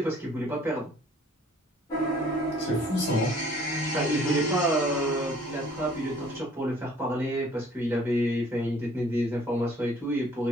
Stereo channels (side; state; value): both; normal; correlation 0.56